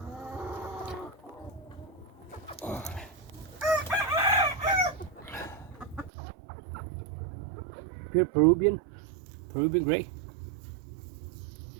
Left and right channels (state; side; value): drops out; left; at 6.1 s